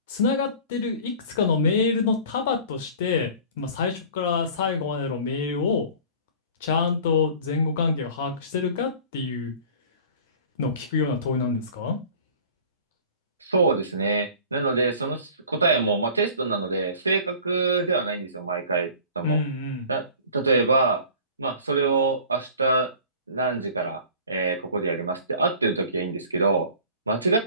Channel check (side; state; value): both; inverted; correlation -0.44